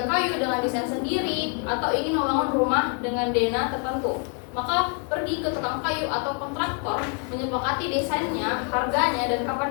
kayu dengan desain sendiri atau ingin membangun rumah dengan dana tertentu. Maka pergi ke tukang kayu atau kontraktor menyepakati desainnya, harganya, dan kapan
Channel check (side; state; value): right; quieter; 39.9 dB